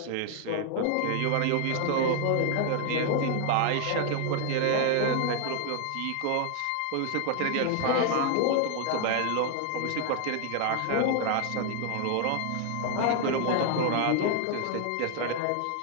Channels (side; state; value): both; different; correlation 0.00